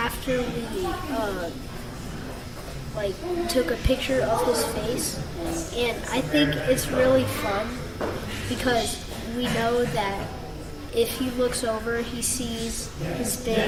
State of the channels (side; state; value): both; identical; correlation 1.00